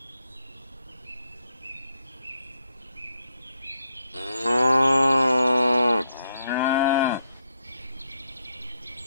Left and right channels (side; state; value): both; inverted; correlation -0.78